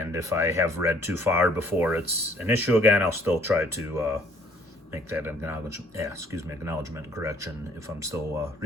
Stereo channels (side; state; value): both; normal; correlation 0.60